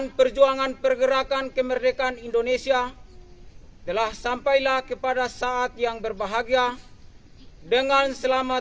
perjuangan pergerakan kemerdekaan Indonesia telah sampailah kepada saat yang berbahagia dengan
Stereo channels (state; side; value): identical; both; correlation 1.00